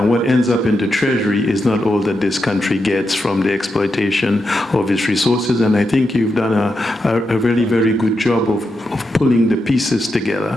what ends up in the Treasury is not all that this country gets from the exploitation of its resources. And I think you've done a really very good job of pulling the pieces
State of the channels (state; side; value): normal; both; correlation 0.86